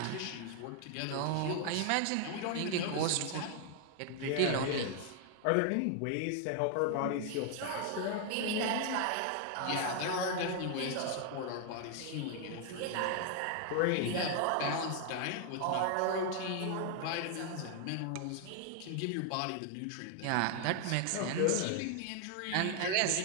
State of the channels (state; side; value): different; both; correlation 0.00